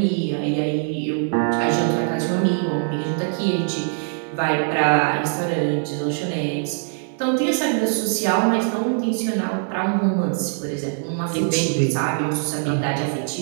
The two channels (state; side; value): silent; left; digital silence